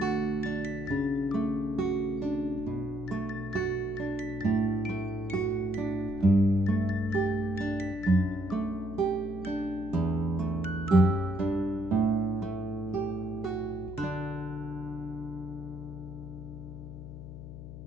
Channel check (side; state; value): left; noise; hum, 11 dB below the sound